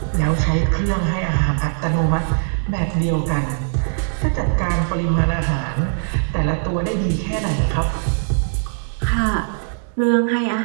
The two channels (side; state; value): left; silent; 65 dB below the other